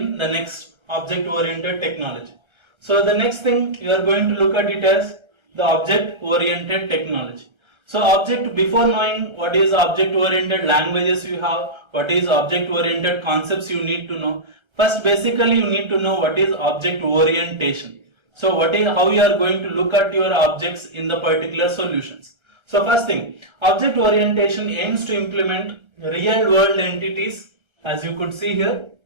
the next object-oriented technology. So the next thing you are going to look at it as the object-oriented technology. So before knowing what is object-oriented languages you have, what is object-oriented concepts you need to know. First, basically you need to know what is object orientation. So how you are going to look at your objects in the particular solutions. So first thing, object orientation aims to implement real world entities, as you could see here.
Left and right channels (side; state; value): left; late; 1.3 ms